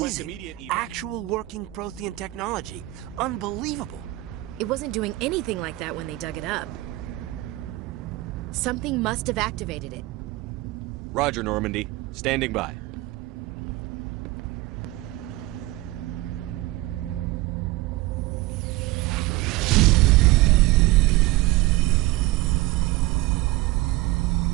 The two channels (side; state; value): left; quieter; 19.4 dB